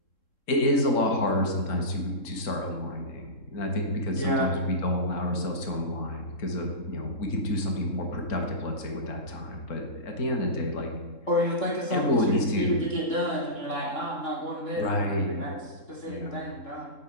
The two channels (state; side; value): late; right; 3.7 ms